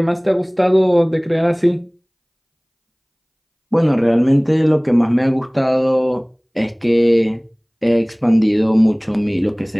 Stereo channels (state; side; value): identical; both; correlation 1.00